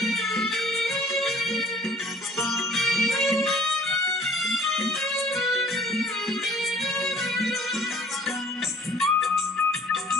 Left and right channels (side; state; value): both; normal; correlation 0.53